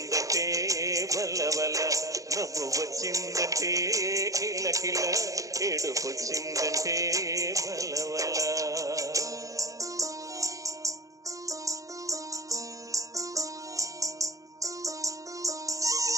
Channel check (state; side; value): late; left; 0.16 ms